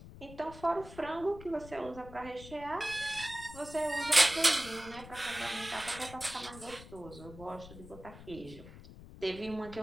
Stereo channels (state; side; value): noise; left; rumble, 16 dB below the sound